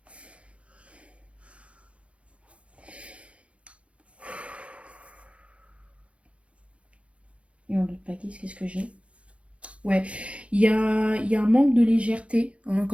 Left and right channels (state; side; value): late; left; 0.062 ms